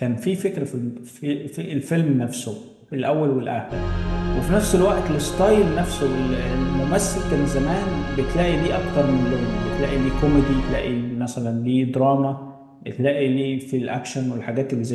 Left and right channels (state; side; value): identical; both; correlation 1.00